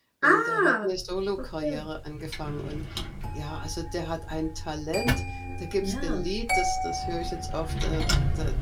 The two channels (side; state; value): both; identical; correlation 1.00